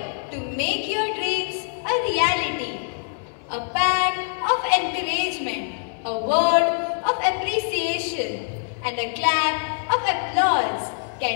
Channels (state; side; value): silent; right; 63 dB below the other